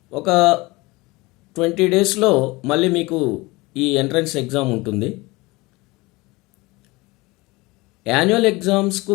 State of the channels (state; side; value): quieter; right; 22.7 dB